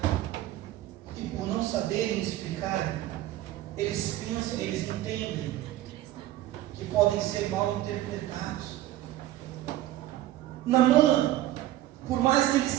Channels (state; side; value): quieter; left; 14.5 dB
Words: E por não saberem explicar, eles pensam, eles entendem que podem ser mal interpretados. Naamã, por mais que ele